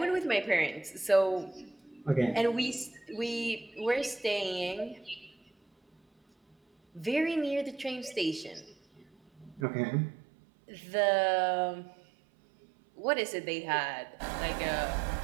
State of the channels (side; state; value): left; drops out; at 9.7 s